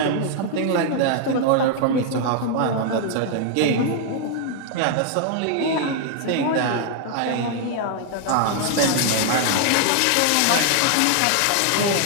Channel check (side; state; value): both; different; correlation 0.00